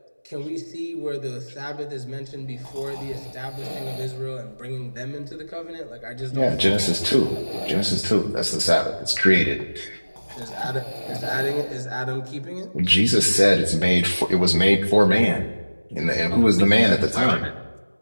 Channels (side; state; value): both; inverted; correlation -1.00